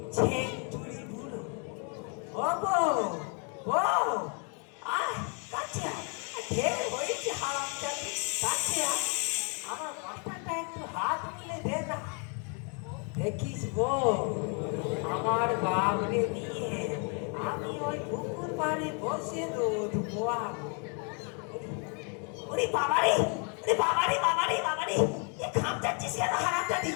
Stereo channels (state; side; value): quieter; right; 38.3 dB